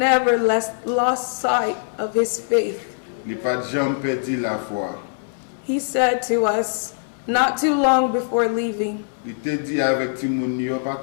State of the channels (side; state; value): right; silent; 60 dB below the other